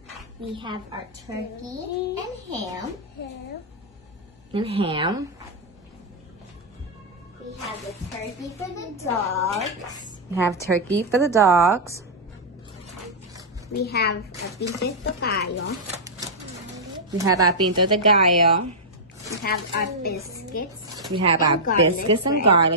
We have our turkey and ham. And ham. We have the turkey for the dogs. We have turkey for the dogs. We have a pinto de gallo. We have our pinto de gallo. We have our biscuits. We have our biscuits and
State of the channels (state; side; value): normal; both; correlation -0.07